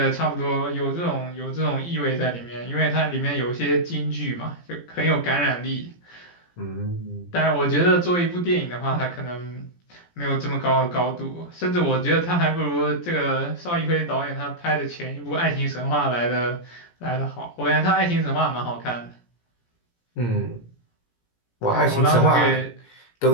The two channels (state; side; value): late; right; 17 ms